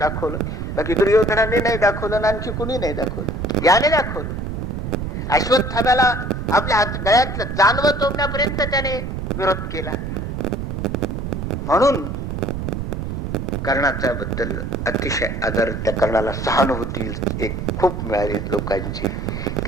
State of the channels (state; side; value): noise; right; rumble, 4 dB below the sound